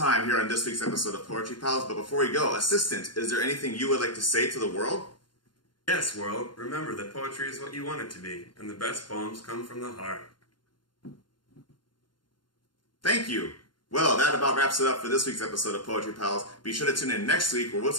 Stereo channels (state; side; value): late; right; 0.71 ms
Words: here on this week's episode of Poetry Pals, but before we go, assistant, is there anything you would like to say to the world? Yes, world, remember that poetry is what you want it to be, and the best poems come from the heart. Thank you. Well, that about wraps it up for this week's episode of Poetry Pals. Be sure to tune in next week where we'll